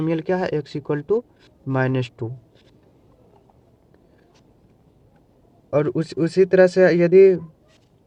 क्या है, x इक्वल टू -2। और उसी तरह से यदि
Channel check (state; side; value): identical; both; correlation 1.00